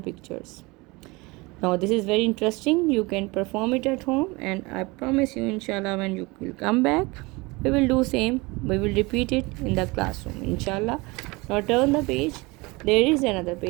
Now this is very interesting. You can perform it at home, and I promise you, inshallah, when you will come back, we will do same. We will repeat it in the classroom, inshallah. Now turn the page. There is another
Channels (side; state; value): left; quieter; 24.4 dB